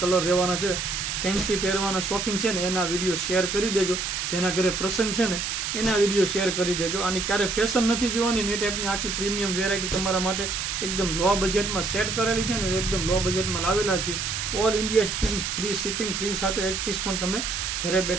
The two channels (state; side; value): noise; right; hiss, 2 dB below the sound